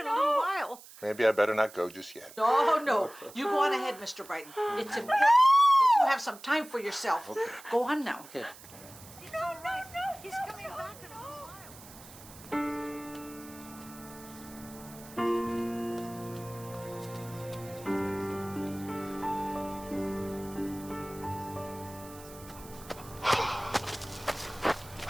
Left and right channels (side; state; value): right; noise; hiss, 18 dB below the sound